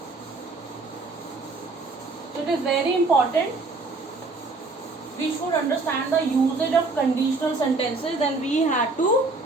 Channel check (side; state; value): left; quieter; 3.5 dB